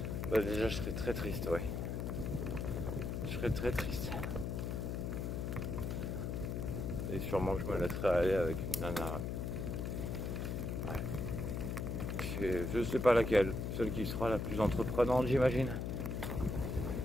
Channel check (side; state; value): left; noise; hum, 2 dB below the sound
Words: je serais très triste, ouais. Je serais très triste. Et sûrement que je me laisserai aller avec une nana. Ouais. Je sais pas laquelle, celle qui sera la plus entreprenante, j'imagine.